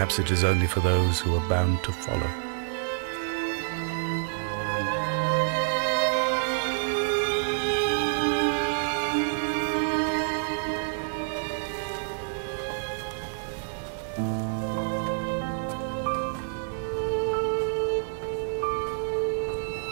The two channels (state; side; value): silent; left; digital silence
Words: it is only for those who are bound to follow.